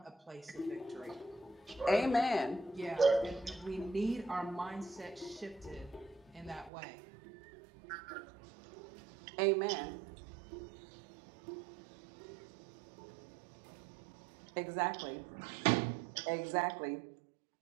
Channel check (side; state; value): left; drops out; at 6.7 s